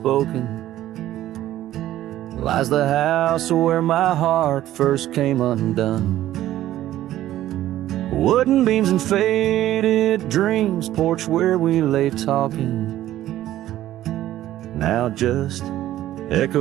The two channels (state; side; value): quieter; left; 13.6 dB